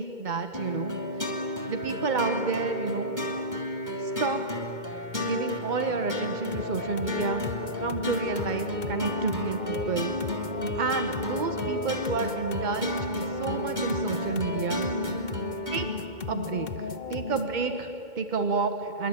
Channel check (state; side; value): late; left; 2.2 ms